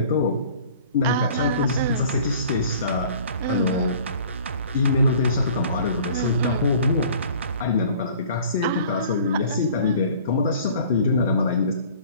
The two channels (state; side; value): inverted; both; correlation -0.49